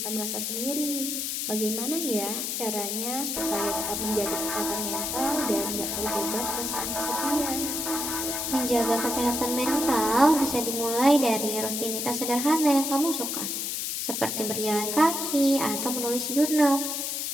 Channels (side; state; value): left; noise; hiss, 2 dB below the sound